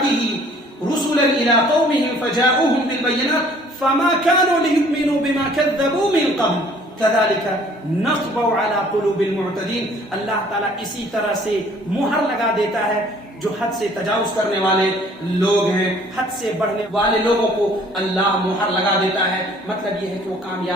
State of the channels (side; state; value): both; normal; correlation 0.56